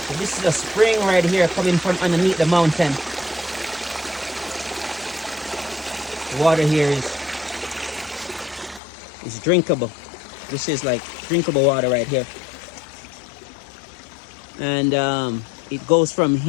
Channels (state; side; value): drops out; right; at 8.8 s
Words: So this is a spring right here coming from underneath the mountain. The water here is drinkable. This is like drinkable water right here. And it goes from